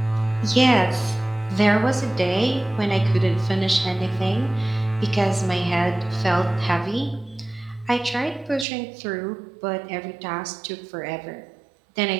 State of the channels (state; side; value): drops out; left; at 8.7 s